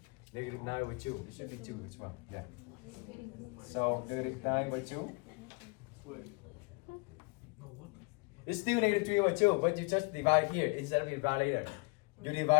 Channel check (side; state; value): right; quieter; 29.2 dB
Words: Negative 9 over 2. It should be 2 as well. Yeah. So negative 9 over 2. It's still negative 3 over 2, but you just divide here instead of divide later. You